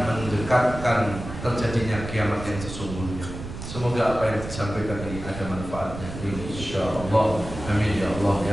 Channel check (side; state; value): right; noise; rumble, 9 dB below the sound